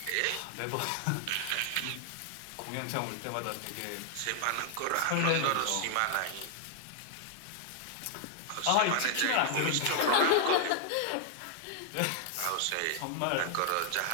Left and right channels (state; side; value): different; both; correlation 0.00